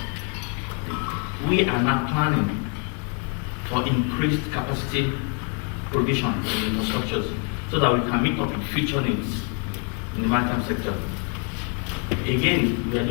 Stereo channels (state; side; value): quieter; right; 38.9 dB